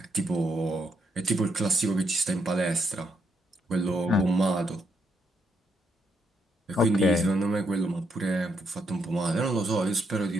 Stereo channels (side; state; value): both; normal; correlation 0.77